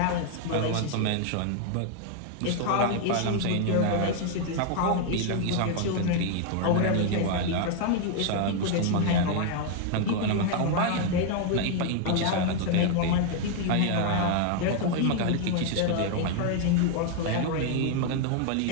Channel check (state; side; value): different; both; correlation 0.00